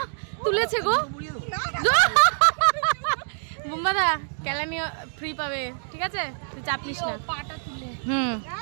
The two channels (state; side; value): silent; left; digital silence